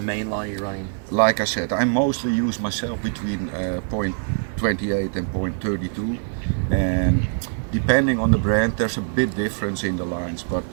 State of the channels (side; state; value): left; silent; 63 dB below the other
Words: main line are you running? Like I said, I mostly use myself between 0.28 and 0.32, and depending on the brand there's a bit difference in the lines, but